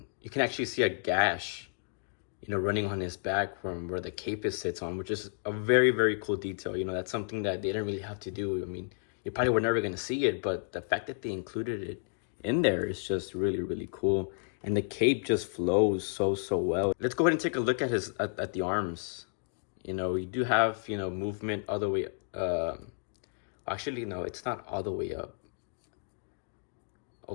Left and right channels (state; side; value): silent; right; digital silence